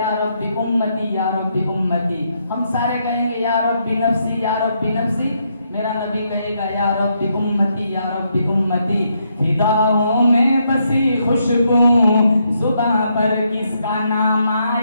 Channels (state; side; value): inverted; both; correlation -0.77